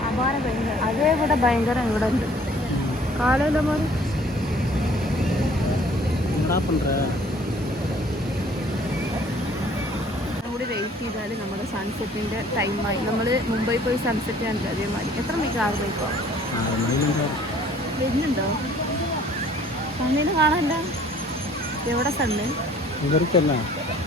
അപാര ഭയങ്കര. അതേ ഇവിടെ ഭയങ്കര ഇവിടെ ഉണ്ട് കാലമില്ല മാറി. കൂടി വെയിറ്റ് ചെയ്താൽ നമ്മുടെ സൺസെറ്റിൻ്റെ ടൈമായി. നമ്മൾ മുംബൈ പോയി സൺസെറ്റ് കണ്ടില്ല അതേമാതിരി. എത്ര മണിക്ക്? 6 മണിക്കോ വരുന്നുണ്ടോ? സണ്ണിന് കാണാനില്ല. എവിടെ സണ്ണ്? ഇങ്ങോട്ടാണല്ലോ.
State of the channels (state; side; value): normal; both; correlation 0.55